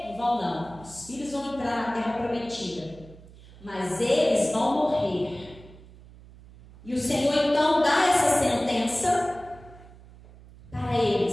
Não vão não. Os filhos vão entrar na terra prometida, mas eles vão morrer. E o Senhor então dá essa sentença para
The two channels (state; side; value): noise; right; hum, 21 dB below the sound